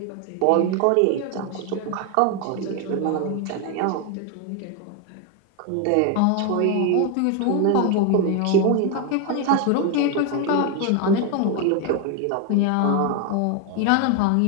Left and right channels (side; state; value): both; different; correlation 0.01